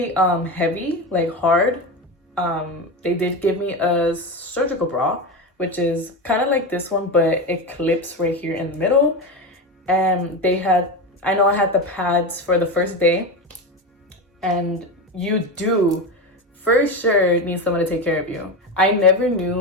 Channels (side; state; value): both; normal; correlation 0.19